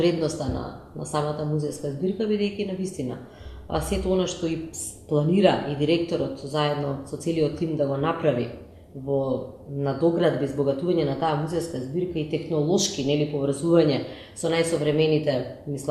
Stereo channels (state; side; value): identical; both; correlation 1.00